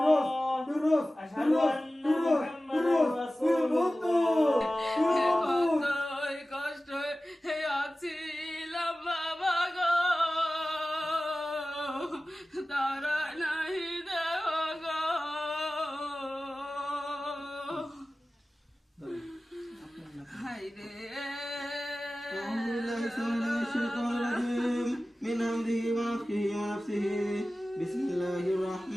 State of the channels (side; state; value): both; normal; correlation 0.96